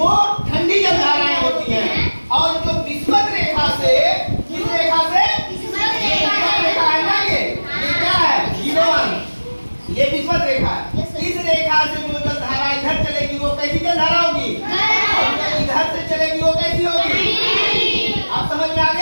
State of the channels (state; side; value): inverted; both; correlation -1.00